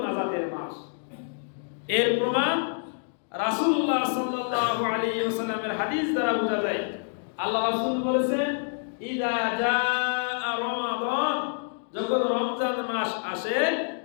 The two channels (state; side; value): silent; right; digital silence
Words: নাজাতের মাস। এর প্রমাণ রাসূলুল্লাহ সাল্লাল্লাহু আলাইহি ওয়াসাল্লামের হাদিস দ্বারা বোঝা যায়। আল্লাহ রাসূল বলেছেন, ইযা জাআ রমাদান, যখন রমজান মাস আসে,